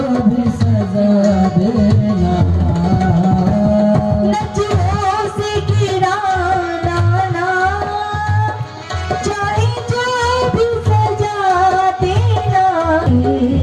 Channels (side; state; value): both; identical; correlation 1.00